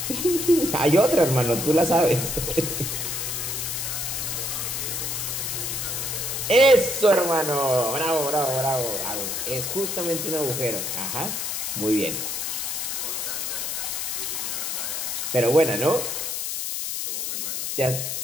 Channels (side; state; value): left; noise; hiss, 2 dB below the sound